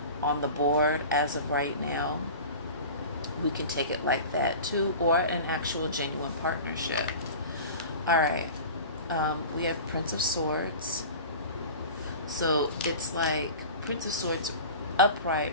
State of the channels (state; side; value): inverted; both; correlation -0.36